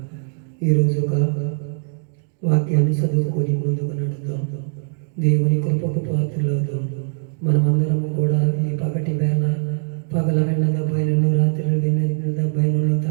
ఈరోజు ఒక వాక్యాన్ని చదువుకొని ముందుకు నడుద్దాం. దేవుని కృపకు పాత్రలవుదాం. మనమందరము కూడా ఈ పగటి వేళ పగల వెళ్ళ దెబ్బైనను రాత్రి దెబ్బైనను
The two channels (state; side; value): silent; left; digital silence